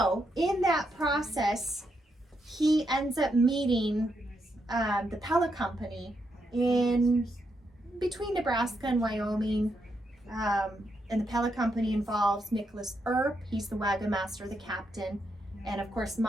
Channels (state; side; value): normal; both; correlation 0.81